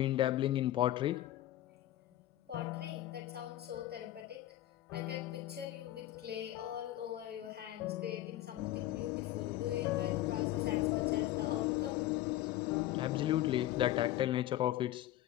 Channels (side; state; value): right; quieter; 14.4 dB